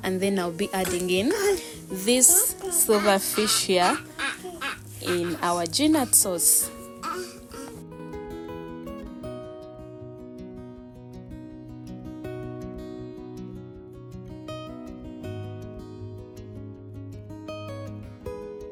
and then I'll be adding in this silverfish here in our ginat sauce.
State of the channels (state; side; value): identical; both; correlation 1.00